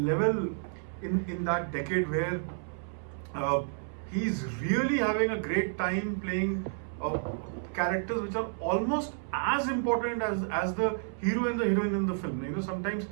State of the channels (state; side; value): silent; left; 57 dB below the other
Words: in that decade, where he's really having a great time playing characters which are almost as important as the hero and the heroine in the film. You know, sometimes,